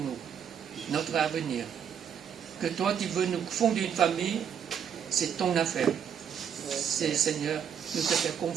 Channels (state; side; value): quieter; left; 8.1 dB